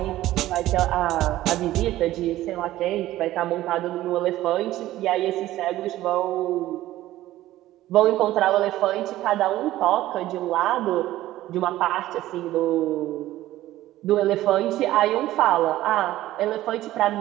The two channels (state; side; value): quieter; left; 15.1 dB